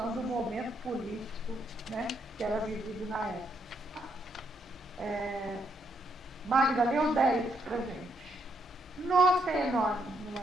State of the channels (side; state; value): both; normal; correlation 0.75